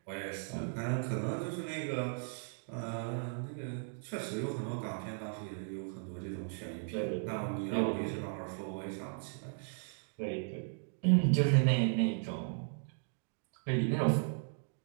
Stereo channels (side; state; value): left; silent; digital silence